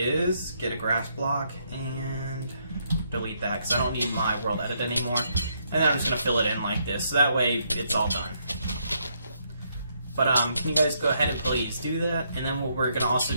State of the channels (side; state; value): both; inverted; correlation -0.74